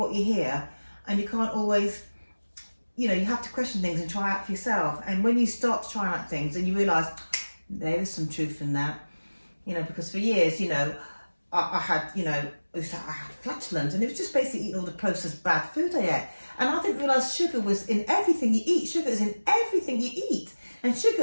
you hear, and you can't always, you know, you have to question things and try out for yourself. And when you start to try out things, and you realise there is some truth in that, you know, because for years, you know, I had, you know, I had flatulence, and it was just basically eating all the processed bad food I ate. And I didn't realise sugar was in everything you eat. Sugar is in everything you eat. And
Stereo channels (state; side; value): inverted; both; correlation -1.00